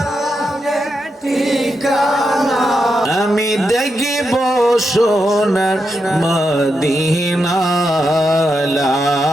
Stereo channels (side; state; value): both; normal; correlation 0.85